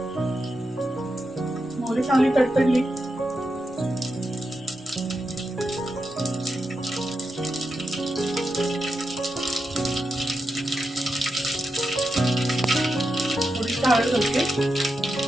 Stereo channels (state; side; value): normal; both; correlation 0.87